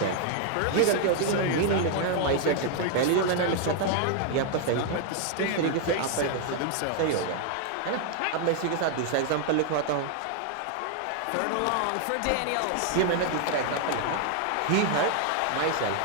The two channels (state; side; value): different; both; correlation 0.00